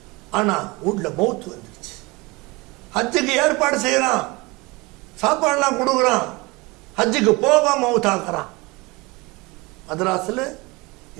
ஆனா வீட்டுல மவுத் வந்துருச்சு. ஹஜ்ஜுக்கு ஏற்பாடு செய்யறான், சாப்பாடுலாம் கொடுக்குறான். ஹஜ்ஜுக்கு போகாம மவுத் ஆக்குறான். மதராஸ்ல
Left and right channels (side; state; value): left; quieter; 24.5 dB